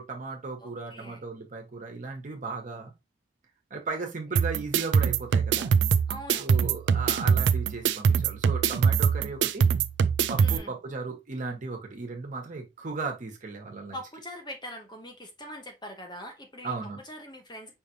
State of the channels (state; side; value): quieter; left; 5.8 dB